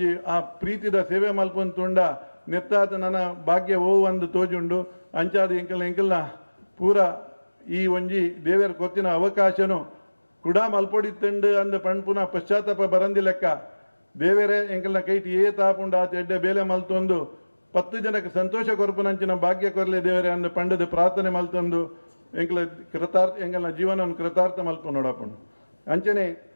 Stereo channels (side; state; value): both; inverted; correlation -1.00